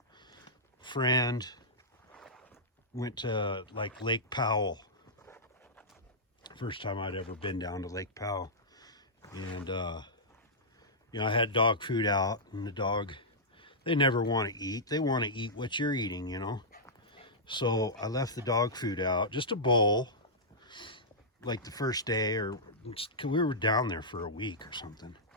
friend, went to like Lake Powell. First time I'd ever been down to Lake Powell. And you know, I had dog food out, and the dog, they never want to eat. They want to eat what you're eating, you know. So I left the dog food out, just a bowl, like the first day, or we were down there for a week or something.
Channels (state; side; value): normal; both; correlation -0.12